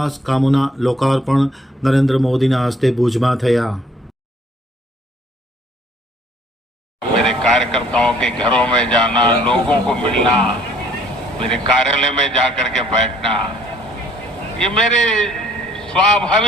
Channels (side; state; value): both; normal; correlation 0.60